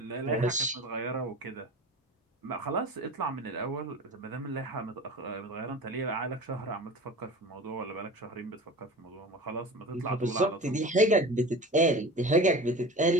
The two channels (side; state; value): both; normal; correlation 0.35